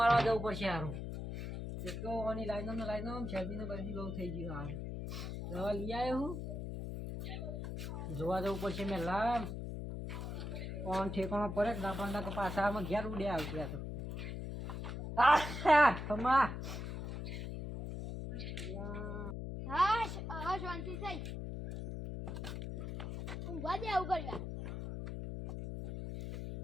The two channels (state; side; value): noise; left; hum, 5 dB below the sound